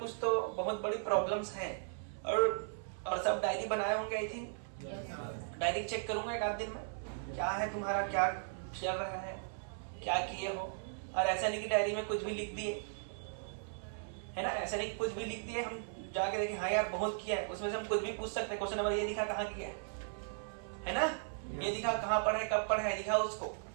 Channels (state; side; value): silent; left; 53 dB below the other